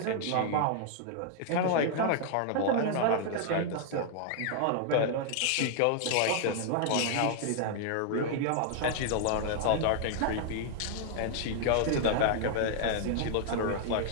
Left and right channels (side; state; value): both; different; correlation 0.00